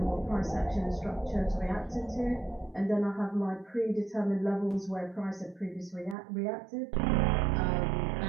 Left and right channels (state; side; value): drops out; left; at 6.2 s